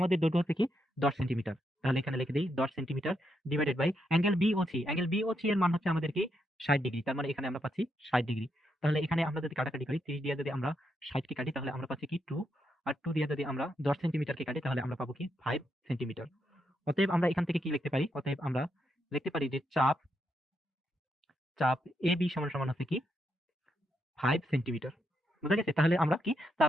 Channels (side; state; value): both; normal; correlation 0.81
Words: দৈর্ঘ্য হচ্ছে কি 10 সেন্টিমিটার। তাহলে এখানে লিখে দিই 10 centimetre divided by angle B O C, angle B O C এর মান হচ্ছে আমাদের কি 60 ডিগ্রি। তার মানে এখানে আমরা পাচ্ছি 60 ডিগ্রি। তাহলে এখানে আমরা যদি কাটাকাটি করি, 30 দিয়ে যদি আমরা 60 কে কাটি তাহলে আমরা পাচ্ছি কি 2, আর 2 দিয়ে যদি আমরা 10 সেন্টিমিটারকে কাটি তাহলে আমরা পাবো কি 5 সেন্টিমিটার। অতএব আমরা এখান থেকে কি লিখতে পারি, অতএব আমরা লিখতে পারি যে চাপ চাপ এ বি সমান সমান হচ্ছে কি 5 সেন্টিমিটার। বুঝা গেছে? তাহলে আমরা কি